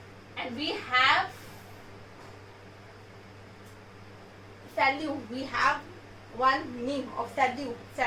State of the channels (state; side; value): identical; both; correlation 1.00